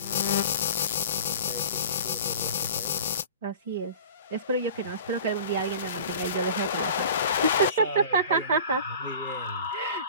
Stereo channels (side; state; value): both; inverted; correlation -0.40